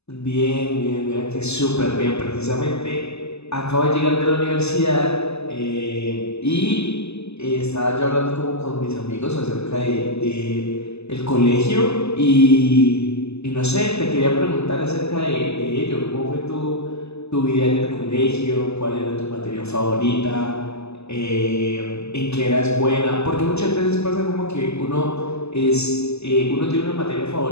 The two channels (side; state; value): right; late; 0.80 ms